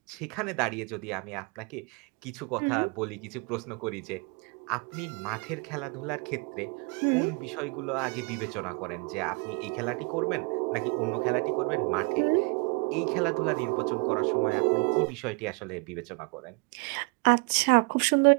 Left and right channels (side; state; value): left; quieter; 30.3 dB